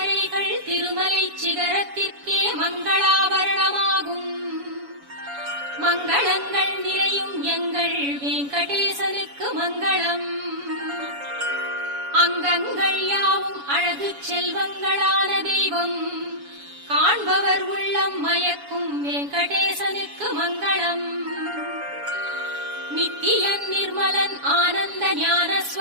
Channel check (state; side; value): late; left; 7.1 ms